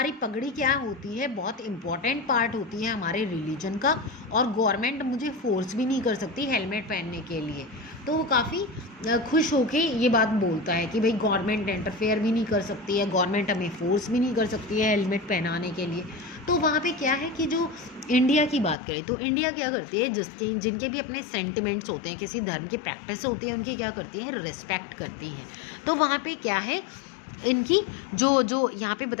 पगड़ी क्या होती है, बहुत इंपॉर्टेंट पार्ट होती है हमारे रिलीजन का, और गवर्नमेंट मुझे फोर्स भी नहीं कर सकती हेलमेट पहनने के लिए। तो वो काफ़ी खुश होके ये बात बोलता है कि भाई गवर्नमेंट इंटरफेयर भी नहीं कर सकती है, गवर्नमेंट हमें फोर्स भी नहीं कर सकती है हेलमेट पहनाने के लिए। तो वहाँ पे क्या है कि जो इंडिया की बात करें तो इंडिया क्या करती है, जिनके भी अपने सेंटिमेंट्स होते हैं, किसी धर्म की प्रैक्टिस होती है, उनकी क्या करती है, रिस्पेक्ट करती है। तो वहाँ पे क्या है, इनकी जो यहाँ पे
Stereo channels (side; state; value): right; drops out; at 18.8 s